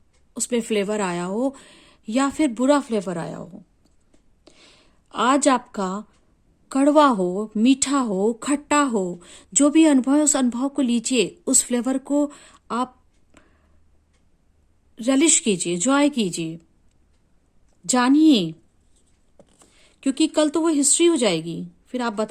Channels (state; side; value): identical; both; correlation 1.00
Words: उसमें फ्लेवर आया हो या फिर बुरा फ्लेवर आया हो। आज आपका कड़वा हो, मीठा हो, खट्टा हो, जो भी अनुभव है उस अनुभव को लीजिए, उस फ्लेवर को आप relish कीजिए, जॉय कीजिए, जानिए, क्योंकि कल तो वो हिस्ट्री हो जाएगी। फिर आप